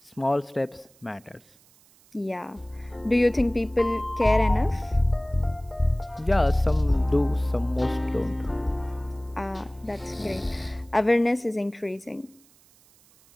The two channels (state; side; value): noise; right; hiss, 29 dB below the sound